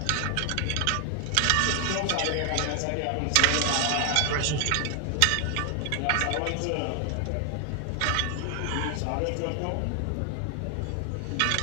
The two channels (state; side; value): different; both; correlation 0.00